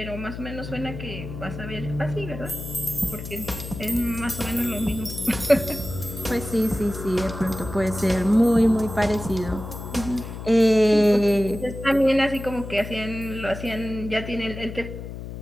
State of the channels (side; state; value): left; noise; hum, 9 dB below the sound